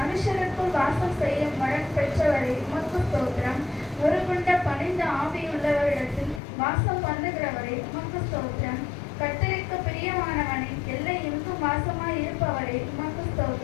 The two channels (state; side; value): drops out; right; at 6.4 s